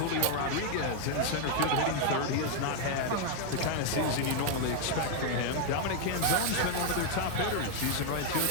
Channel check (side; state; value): both; different; correlation 0.00